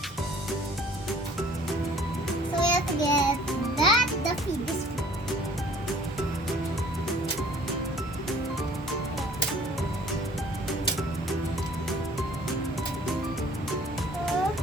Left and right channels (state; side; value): normal; both; correlation 0.53